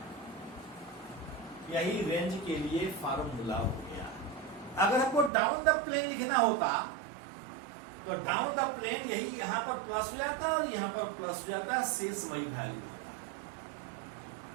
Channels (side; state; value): left; drops out; at 5.3 s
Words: यही रेंज के लिए फॉर्मूला हो गया। अगर हमको डाउन द प्लेन लिखना होता तो डाउन द प्लेन यही यहां पर प्लस हो जाता और यहां पर प्लस हो जाता, शेष वही वैल्यू होता।